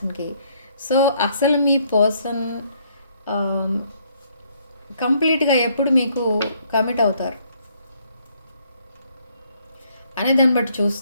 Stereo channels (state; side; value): inverted; both; correlation -0.67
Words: సో అసలు మీ పర్సన్ కంప్లీట్గా ఎప్పుడు మీకు కమిట్ అవుతారు అనే దాన్ని బట్టి